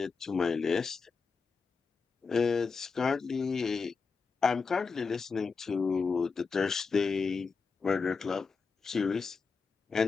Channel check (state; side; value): quieter; right; 5.0 dB